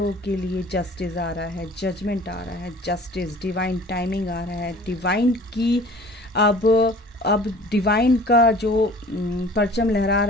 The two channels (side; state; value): both; normal; correlation 0.47